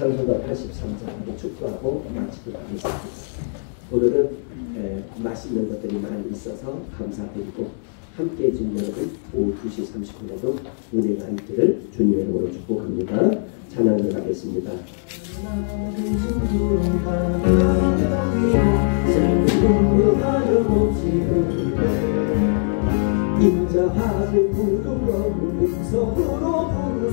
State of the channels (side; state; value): right; silent; digital silence